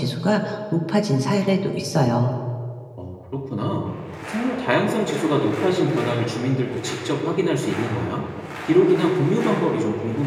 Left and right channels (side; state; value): both; identical; correlation 1.00